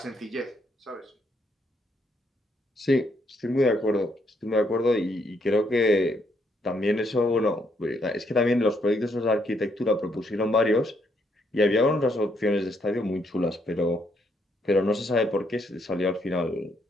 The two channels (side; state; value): both; normal; correlation 0.73